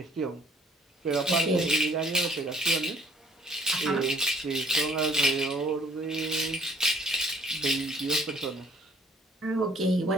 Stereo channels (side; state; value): both; normal; correlation 0.60